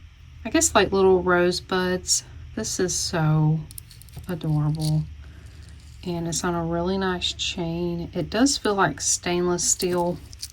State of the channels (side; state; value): both; identical; correlation 1.00